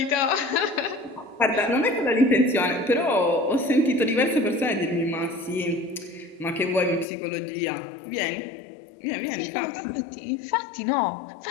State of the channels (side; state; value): right; drops out; at 7.1 s